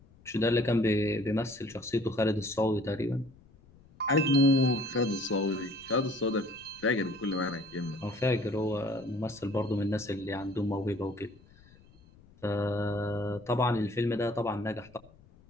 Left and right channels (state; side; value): noise; left; rumble, 26 dB below the sound